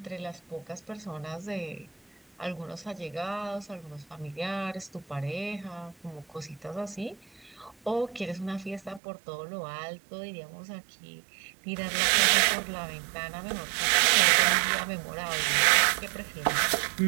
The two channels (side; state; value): left; drops out; at 9.0 s